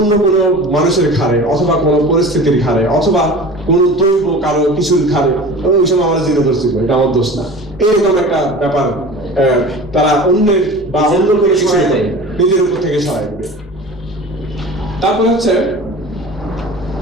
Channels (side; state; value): both; normal; correlation 0.37